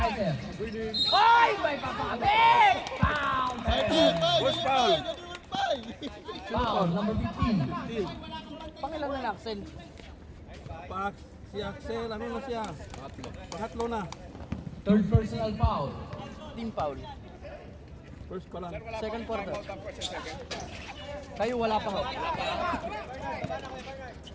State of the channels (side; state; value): both; identical; correlation 1.00